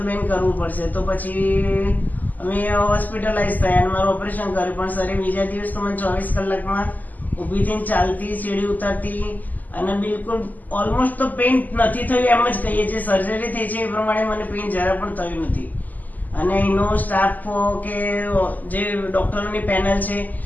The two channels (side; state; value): right; late; 0.082 ms